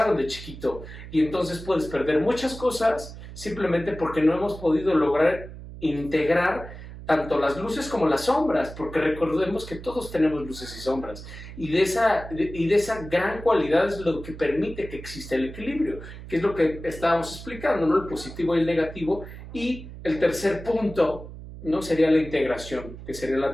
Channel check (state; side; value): noise; right; hum, 13 dB below the sound